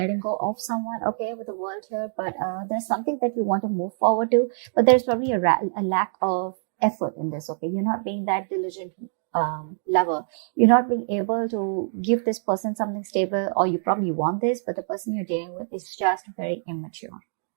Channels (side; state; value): left; silent; digital silence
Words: go of someone, okay, with the world here. But there's something that you want to move forward to. But there's probably a lack of effort in this, okay? You're not being that diligent lover. You're not being able to give this person something stable, or you probably want this, but the person you're dealing with is just very immature,